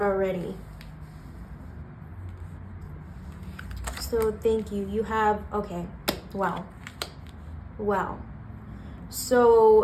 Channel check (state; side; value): identical; both; correlation 1.00